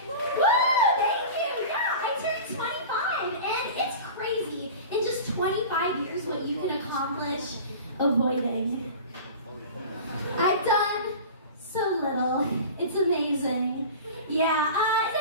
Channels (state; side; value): inverted; both; correlation -0.35